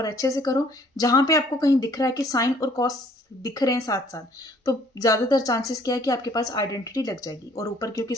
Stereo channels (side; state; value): both; normal; correlation 0.59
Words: अच्छे से करो। जहां पे आपको कहीं दिख रहा है कि साइन और कॉस दिख रहे हैं साथ साथ, तो ज्यादातर चांसेस क्या है कि आपके पास आइडेंटिटी लग जाएगी। और ऊपर क्योंकि